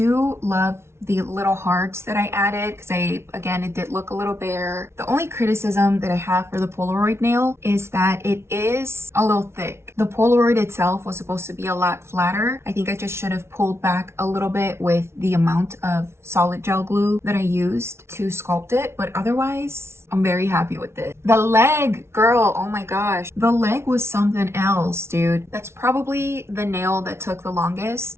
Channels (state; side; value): late; left; 0.13 ms